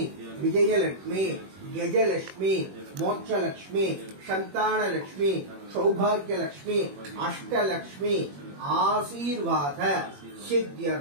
विजयलक्ष्मी गजलक्ष्मी मोक्षलक्ष्मी संतानलक्ष्मी सौभाग्यलक्ष्मी अष्टलक्ष्मी आशीर्वाद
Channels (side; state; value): left; late; 21 ms